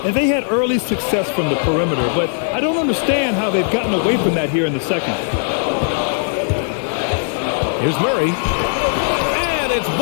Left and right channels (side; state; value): right; silent; 64 dB below the other